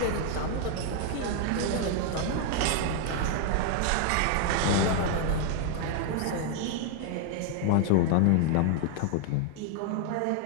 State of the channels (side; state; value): both; different; correlation 0.00